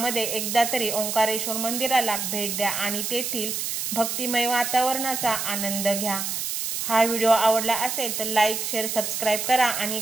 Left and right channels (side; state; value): right; noise; hiss, 3 dB below the sound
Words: एकदा तरी ओंकारेश्वर मंदिराला भेट द्या आणि तेथील भक्तिमय वातावरणाचा आनंद घ्या। हा व्हिडिओ आवडला असेल तर लाईक शेअर सबस्क्राईब करा आणि